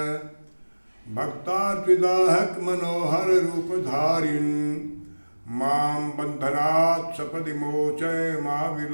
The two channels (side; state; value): both; inverted; correlation -1.00